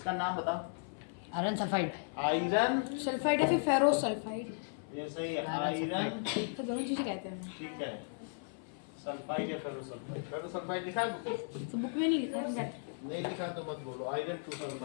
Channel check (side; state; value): right; silent; 54 dB below the other